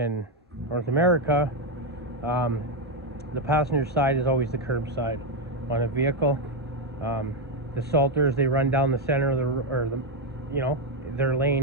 North America, the passenger side is always the curb side on a vehicle. The salters, they run down the center of their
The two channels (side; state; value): both; normal; correlation 0.05